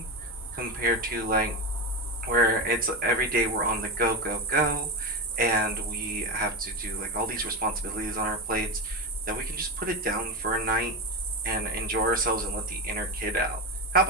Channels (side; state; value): both; normal; correlation 0.15